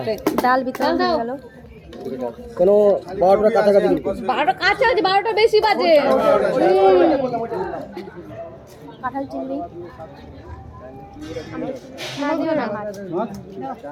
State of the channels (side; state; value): both; identical; correlation 1.00